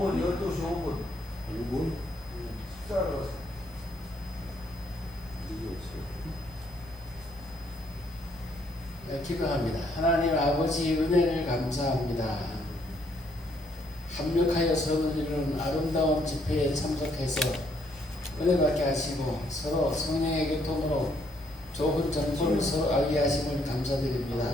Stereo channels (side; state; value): both; normal; correlation 0.70